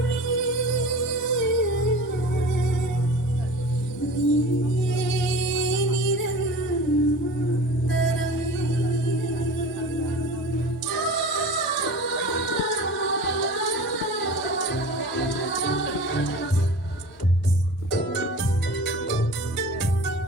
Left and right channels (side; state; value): both; normal; correlation 0.37